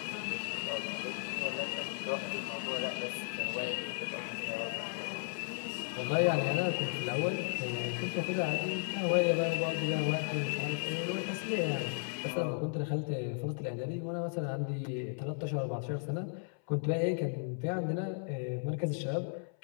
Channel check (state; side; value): silent; right; 54 dB below the other